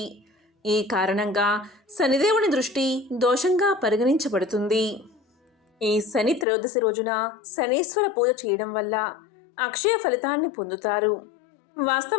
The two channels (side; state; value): right; drops out; at 6.5 s